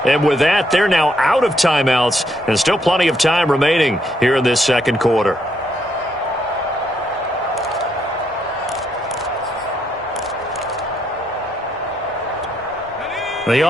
And with that, they're now out of timeouts and still plenty of time remaining here in this second quarter. The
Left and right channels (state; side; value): normal; both; correlation 0.75